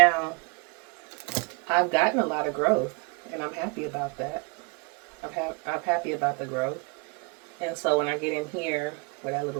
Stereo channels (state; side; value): quieter; left; 29.9 dB